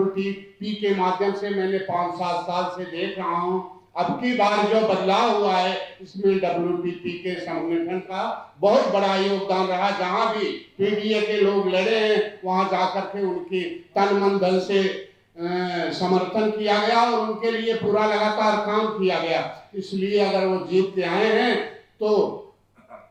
के माध्यम से मैंने 5-7 साल से देख रहा हूँ। अब की बार जो बदलाव हुआ है इसमें WTP के संगठन का बहुत बड़ा योगदान रहा। जहाँ भी पीडीए के लोग लड़े हैं वहाँ जाकर के उनकी तन मन धन से समर्थन किया गया और उनके लिए पूरा लगातार काम किया गया। इसलिए अगर वो जीत के आए हैं तो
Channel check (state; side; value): identical; both; correlation 1.00